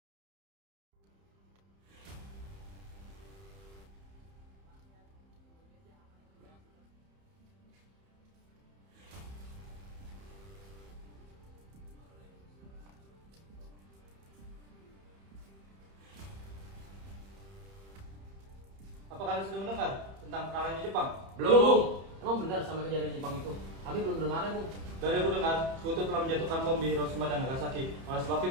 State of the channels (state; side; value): late; left; 31 ms